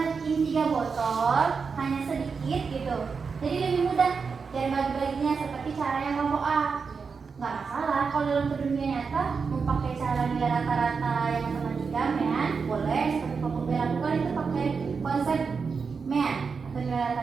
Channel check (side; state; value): left; quieter; 5.3 dB